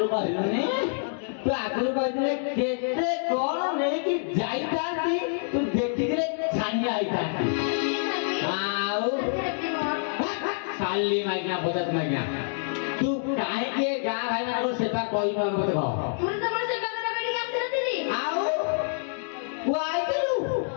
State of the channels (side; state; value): right; silent; digital silence